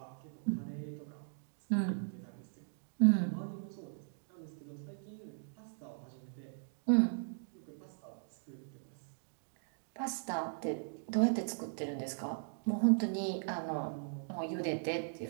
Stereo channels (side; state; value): left; silent; digital silence